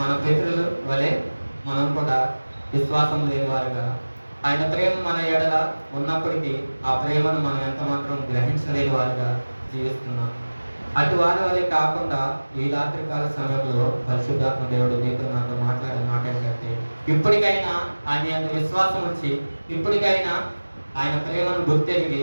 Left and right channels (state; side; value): inverted; both; correlation -1.00